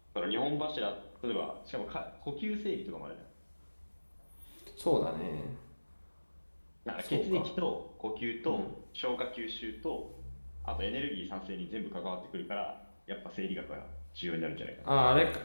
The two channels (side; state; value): both; inverted; correlation -1.00